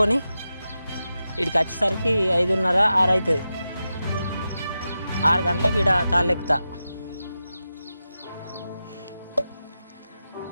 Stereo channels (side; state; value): both; inverted; correlation -0.91